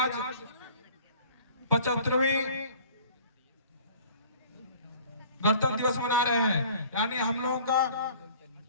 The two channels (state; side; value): inverted; both; correlation -0.50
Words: 75वीं गणतंत्र दिवस मना रहे हैं, यानी हम लोगों का